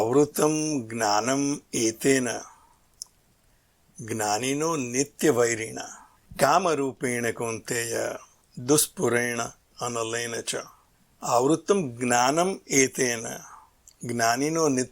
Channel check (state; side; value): identical; both; correlation 1.00